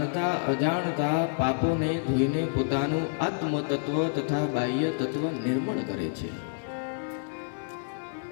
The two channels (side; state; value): right; silent; digital silence